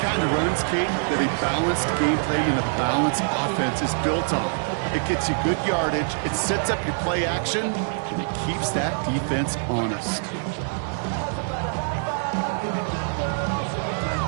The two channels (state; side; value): silent; left; digital silence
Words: of runs, Kate, that a balanced game plan and a balanced offense is built on. It gets you good yardage, it sets up your play action, and it keeps that defense honest.